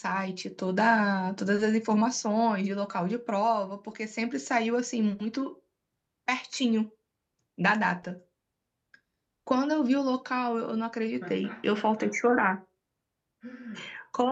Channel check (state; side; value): identical; both; correlation 1.00